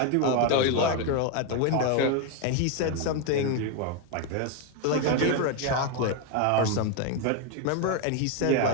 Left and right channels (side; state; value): both; different; correlation 0.01